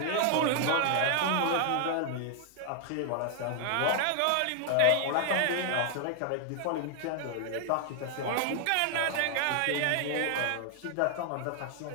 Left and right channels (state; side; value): different; both; correlation 0.00